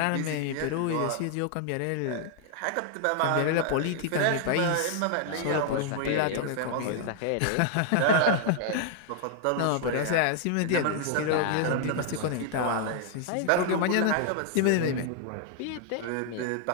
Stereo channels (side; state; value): both; different; correlation -0.01